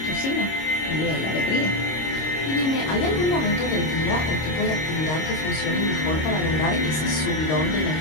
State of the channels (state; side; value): late; right; 26 ms